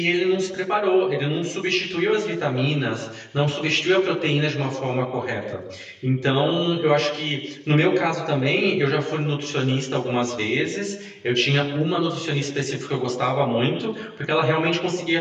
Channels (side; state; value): both; identical; correlation 1.00